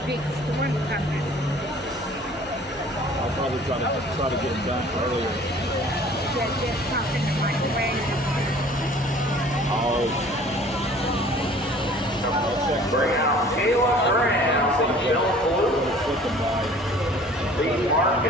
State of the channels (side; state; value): both; normal; correlation 0.50